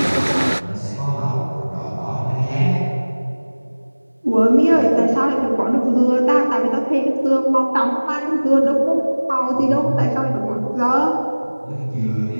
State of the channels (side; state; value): both; inverted; correlation -1.00